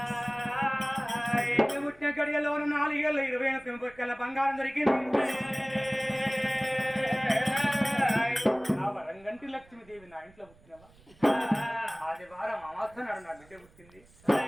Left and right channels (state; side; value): noise; right; rumble, 27 dB below the sound